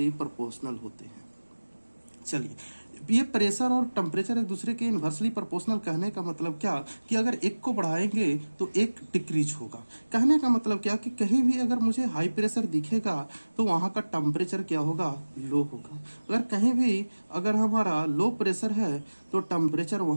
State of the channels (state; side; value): inverted; both; correlation -1.00